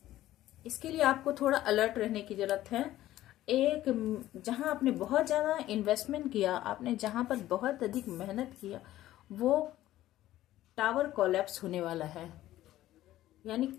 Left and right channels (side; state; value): right; quieter; 14.4 dB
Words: इसके लिए आपको थोड़ा अलर्ट रहने की जरूरत है। एक जहां आपने बहुत ज्यादा इन्वेस्टमेंट किया, आपने जहां पर बहुत अधिक मेहनत किया, वो टावर कोलैप्स होने वाला है, यानी